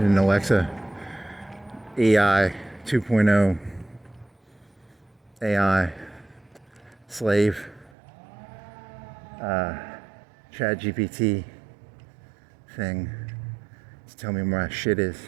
Alexa AI 2.0 AI slave Chat GPT thing to tell me where my shit is,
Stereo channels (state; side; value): drops out; left; at 7.9 s